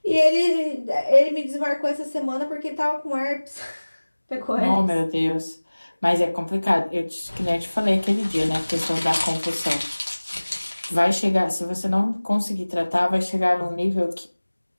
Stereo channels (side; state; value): both; inverted; correlation -1.00